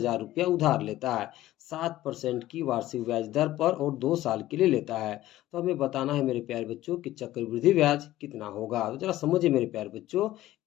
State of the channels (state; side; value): quieter; right; 15.1 dB